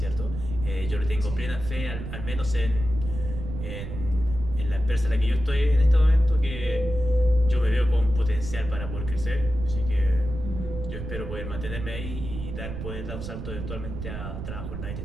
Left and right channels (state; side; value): noise; right; rumble, 7 dB below the sound